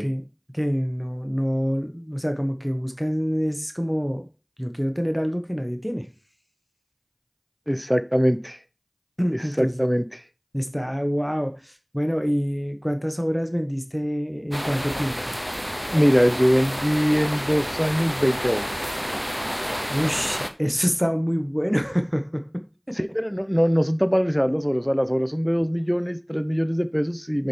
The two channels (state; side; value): identical; both; correlation 1.00